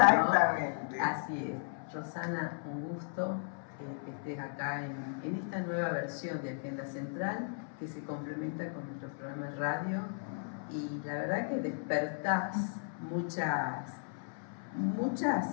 ¿No? Así es. Rosana, un gusto que estés acá en esta nueva versión de Agenda Central que se complementa con nuestro programa de radio, y la verdad que despertás muchas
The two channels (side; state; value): right; silent; 54 dB below the other